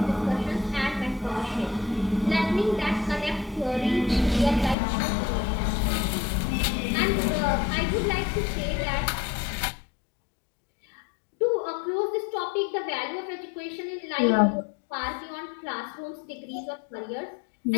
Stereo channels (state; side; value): drops out; right; at 4.8 s